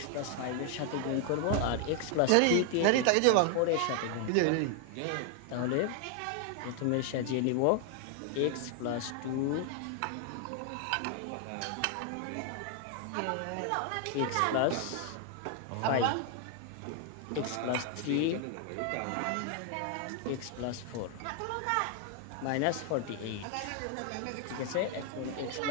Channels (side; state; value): both; different; correlation 0.00